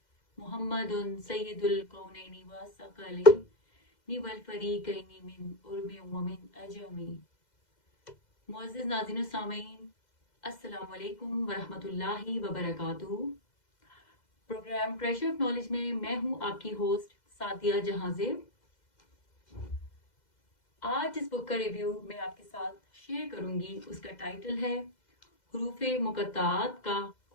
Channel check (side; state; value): right; late; 2.0 ms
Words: محمد سید الکونین والثقلین والفریقین من عرب ومن عجم۔ معزز ناظرین و سامعین، السلام علیکم ورحمۃ اللہ وبرکاتہ۔ پروگرام ٹریجر آف نالج میں میں ہوں آپ کی ہوسٹ سعدیہ جہاں زیب۔ آج اس بک کا ریویو میں آپ کے ساتھ شیئر کروں گی۔ اس کا ٹائٹل ہے حروف مقطعات کا